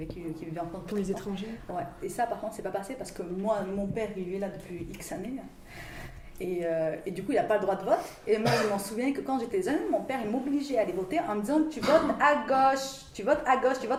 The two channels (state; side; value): identical; both; correlation 1.00